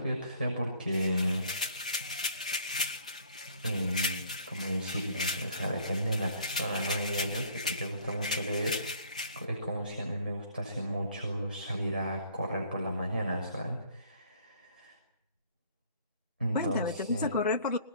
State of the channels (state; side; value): inverted; both; correlation -0.57